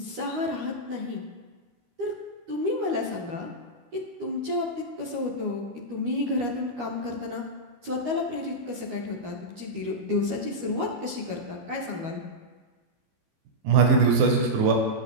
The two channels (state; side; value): late; left; 13 ms